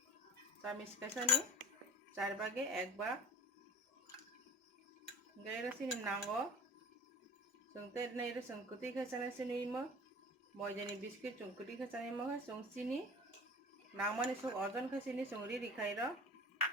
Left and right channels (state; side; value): normal; both; correlation 0.40